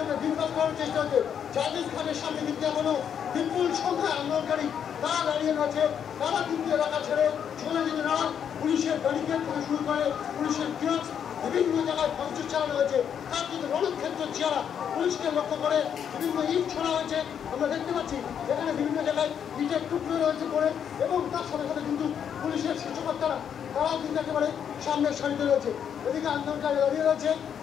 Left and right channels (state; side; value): quieter; right; 8.3 dB